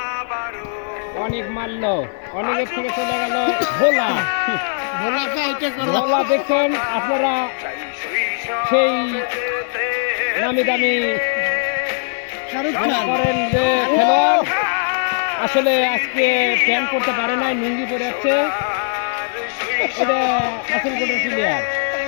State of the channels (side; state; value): right; silent; 62 dB below the other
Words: অনেক মারল, অনেকের থেকে চলে গেল ভোলা। ভোলা দেখছেন আপনারা, সেই নামি দামি শাহরুখ মনে খান করেন যে খেলোয়াড় আসলে আজকে প্যান্ট করতে পারে নাই, লুঙ্গি পরে যাচ্ছে। এটা আসল কোটের প্লেয়ার।